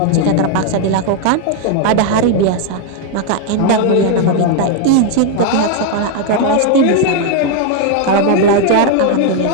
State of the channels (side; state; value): both; different; correlation 0.01